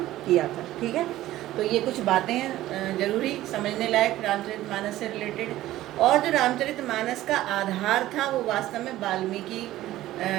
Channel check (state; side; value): quieter; left; 15.1 dB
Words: किया था, ठीक है। तो ये कुछ बातें हैं जरूरी समझने लायक रामचरितमानस से रिलेटेड। और जो रामचरितमानस का आधार था वो वास्तव में वाल्मीकि